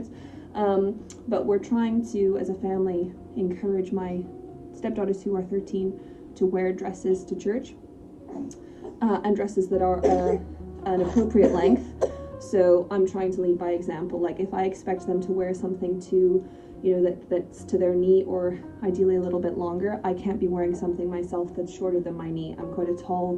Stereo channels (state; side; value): identical; both; correlation 1.00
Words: But we're trying to, as a family, encourage my stepdaughters who are 13 to wear dresses to church, and dresses that are an appropriate length. So I'm trying to lead by example. Like, if I expect them to wear something to, you know, that's to their knee, or ideally a little bit longer, I can't be wearing something myself that's shorter than my knee. I'm quite a tall